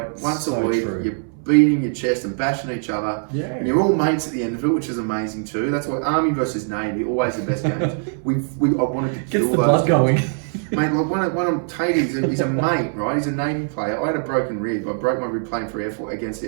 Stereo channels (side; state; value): left; silent; 64 dB below the other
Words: once a week. You're beating your chest and bashing each other, and you're all mates at the end of it, which is amazing too. That's why Army versus Navy, always the best games. I wanted to kill those guys. Mate, like one of Tatey, he's a mate, right? He's a Navy player. I had a broken rib. I broke my rib playing for against